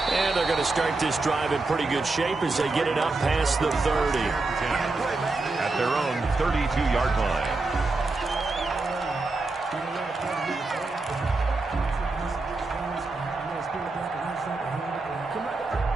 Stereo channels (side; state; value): left; quieter; 3.4 dB